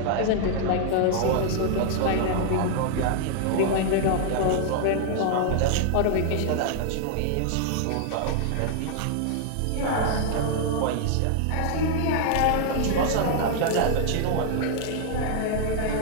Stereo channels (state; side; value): different; both; correlation 0.00